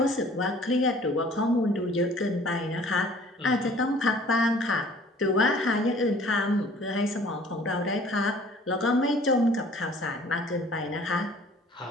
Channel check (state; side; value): normal; both; correlation 0.52